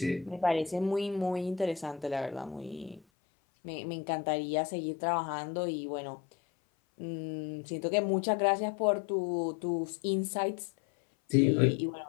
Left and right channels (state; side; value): drops out; right; at 3.0 s